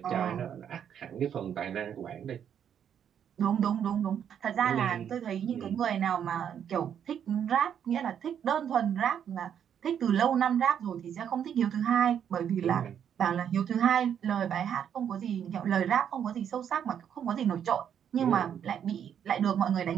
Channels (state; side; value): quieter; left; 8.8 dB